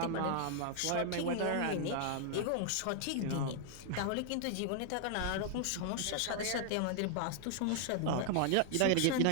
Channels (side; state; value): both; different; correlation 0.00